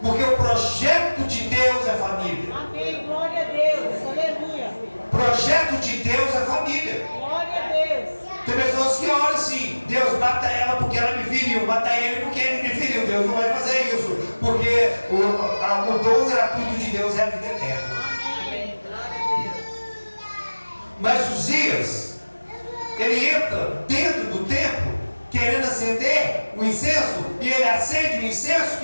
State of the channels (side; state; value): both; inverted; correlation -1.00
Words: Porque o projeto de Deus é família. Amém. Glória a Deus. Aleluia. O projeto de Deus é família. Glória a Deus. Tem pessoas que olham assim: Deus, mata ela porque ela me feriu, mata ele porque ele me feriu. Deus não vai fazer isso, porque o dom gratuito de Deus é a vida eterna. Amém. Glória a Deus. Mas Uzias, ele entra dentro do templo querendo acender o incenso, e ele acende o incenso